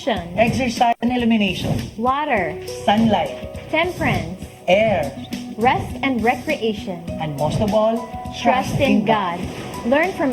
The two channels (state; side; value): identical; both; correlation 1.00